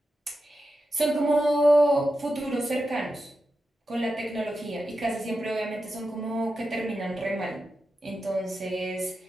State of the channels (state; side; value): normal; both; correlation 0.90